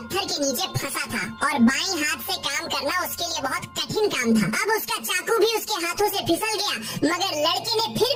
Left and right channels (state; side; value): identical; both; correlation 1.00